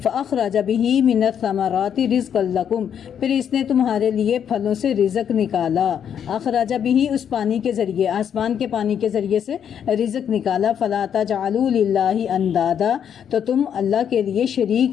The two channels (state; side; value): quieter; right; 8.6 dB